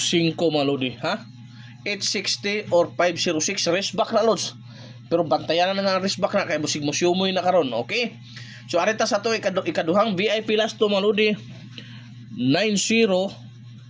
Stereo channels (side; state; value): both; identical; correlation 1.00